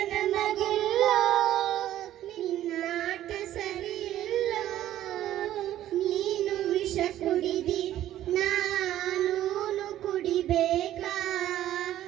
ನಮಗಿಲ್ಲ ನಿನ್ನಾಟ ಸರಿಯಿಲ್ಲ ನೀನು ವಿಷ ಕುಡಿದಿ ನಾನು ಕುಡಿಬೇಕಾ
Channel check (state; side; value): quieter; left; 12.8 dB